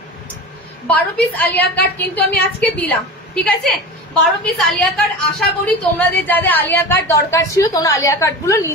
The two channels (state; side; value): normal; both; correlation 0.30